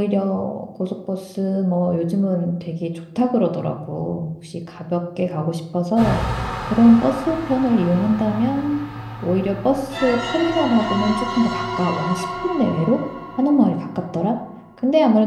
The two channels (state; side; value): identical; both; correlation 1.00